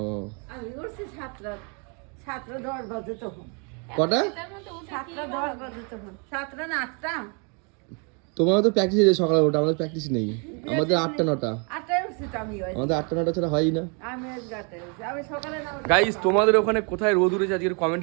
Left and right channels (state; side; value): quieter; left; 35.9 dB